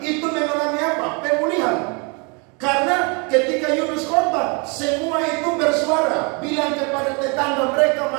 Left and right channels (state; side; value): quieter; left; 32.7 dB